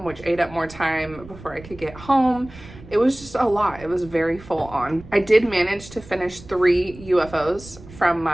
which ate up more time before I could get home. It was just a lot. It was very full on. I did manage to finish 3 UFOs from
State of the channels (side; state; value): right; noise; rumble, 18 dB below the sound